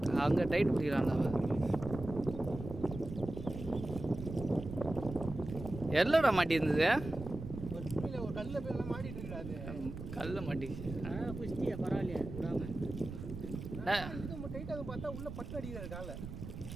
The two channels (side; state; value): right; noise; rumble, 9 dB below the sound